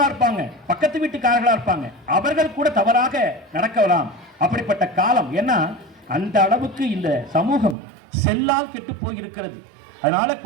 இருப்பாங்க, பக்கத்து வீட்டுக்காரர்களா இருப்பாங்க. அவர்கள் கூட தவறாக நடக்கலாம். அப்படிப்பட்ட காலம். ஏன்னா அந்த அளவுக்கு இந்த சமூகம் செல்லால் கெட்டு போய் இருக்கிறது. அதனால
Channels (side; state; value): left; drops out; at 7.8 s